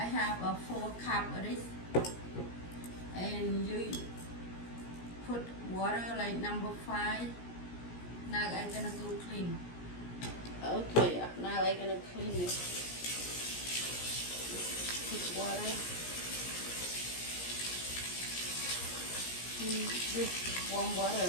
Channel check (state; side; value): late; right; 17 ms